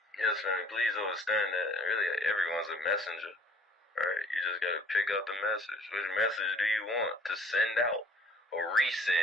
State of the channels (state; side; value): normal; both; correlation 0.54